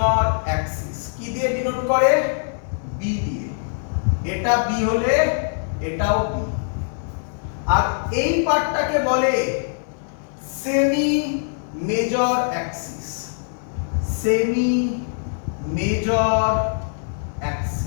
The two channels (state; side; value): silent; right; digital silence